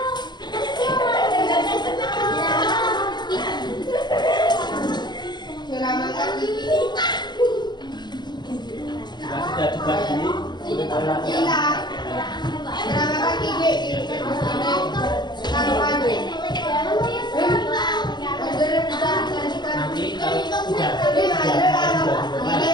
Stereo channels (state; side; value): late; right; 0.21 ms